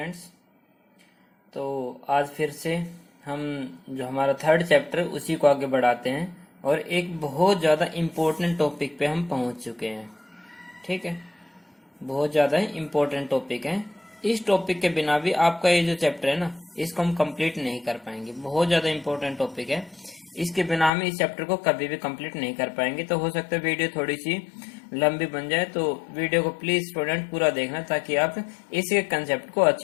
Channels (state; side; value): drops out; right; at 20.9 s